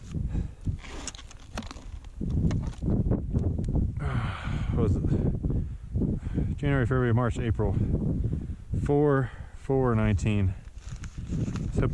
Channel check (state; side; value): identical; both; correlation 1.00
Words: What was it? January, February, March, April. 4/4/19. Let's hope